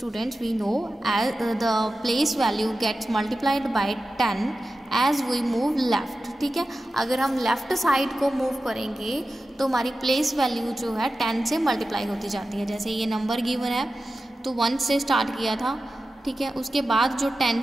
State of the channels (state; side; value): normal; both; correlation 0.93